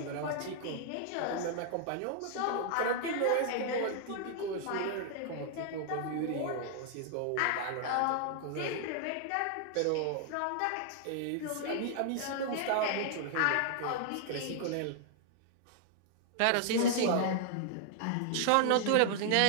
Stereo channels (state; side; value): different; both; correlation -0.01